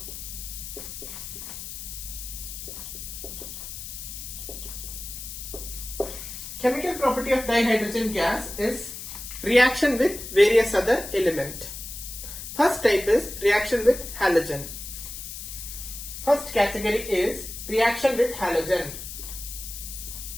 Chemical property of dihydrogen gas is reaction with various other element. First type is reaction with halogen. First category is reaction with halogen.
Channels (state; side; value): noise; left; hiss, 9 dB below the sound